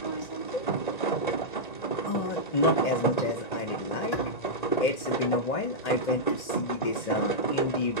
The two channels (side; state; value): right; late; 1.9 ms